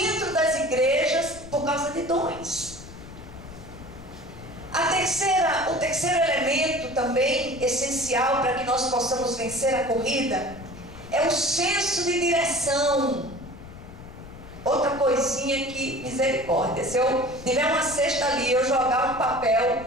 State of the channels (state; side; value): noise; left; rumble, 16 dB below the sound